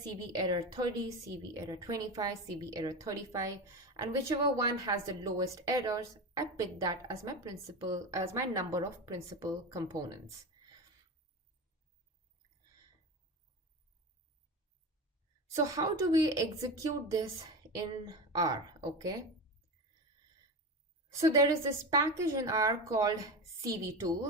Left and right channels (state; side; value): normal; both; correlation 0.23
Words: error 30, CV error 25, CV error 35, and whichever one has the lowest errors, I pick that as my number of principal components. So how do we execute this in R, okay? So there is this package in R called CV